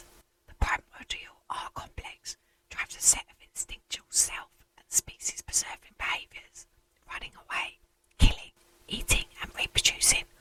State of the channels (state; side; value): identical; both; correlation 1.00